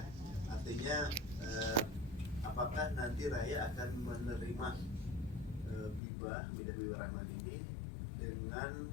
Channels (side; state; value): right; drops out; at 6.0 s